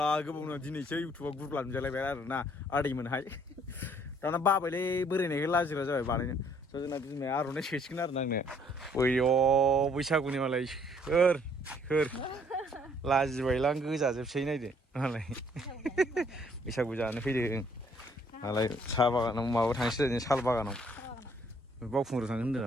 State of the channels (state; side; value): normal; both; correlation 0.63